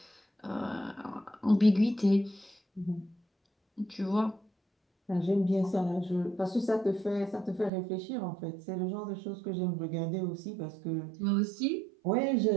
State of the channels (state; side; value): drops out; left; at 7.7 s